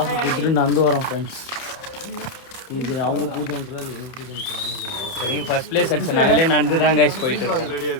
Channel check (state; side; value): late; right; 30 ms